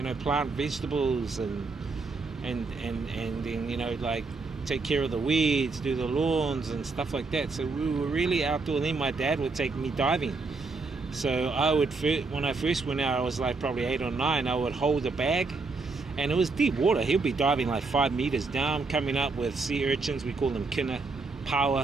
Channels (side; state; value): left; quieter; 3.9 dB